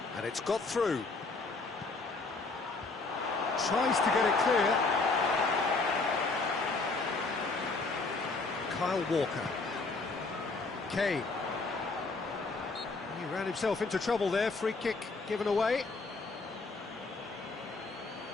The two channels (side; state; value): right; quieter; 3.8 dB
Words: And it's got through. Tries to get it clear. Kyle Walker. Kane. He ran himself into trouble there. Free kick given away.